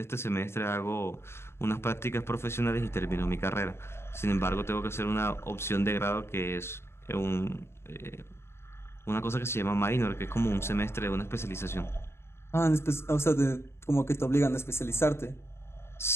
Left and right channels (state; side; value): late; right; 0.12 ms